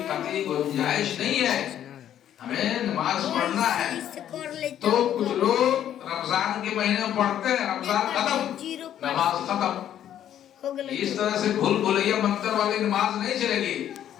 قطعی گنجائش نہیں ہے، ہمیں نماز پڑھنا ہے۔ تو کچھ لوگ رمضان کے مہینے میں پڑھتے ہیں، رمضان ختم نماز ختم، اس طرح سے بھول بھلیا منتر والی نماز نہیں چلے گی،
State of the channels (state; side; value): quieter; right; 10.7 dB